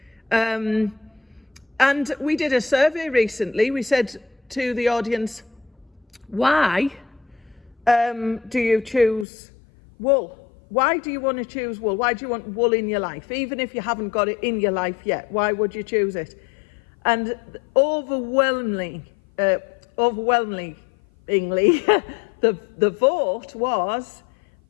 And we did a survey recently. We said to the audience, why do you choose wool? Why do you want to choose wool? Why do you want wool in your life? Even if you haven't got it in your life yet, why would you choose it? And overwhelmingly, the vote was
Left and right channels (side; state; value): right; drops out; at 9.2 s